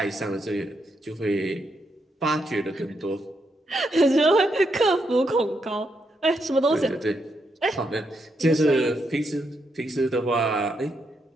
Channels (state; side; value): normal; both; correlation 0.80